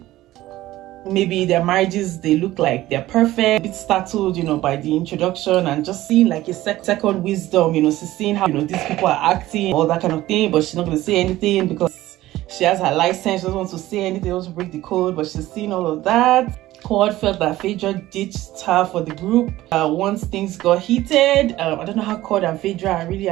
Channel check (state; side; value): quieter; left; 16.0 dB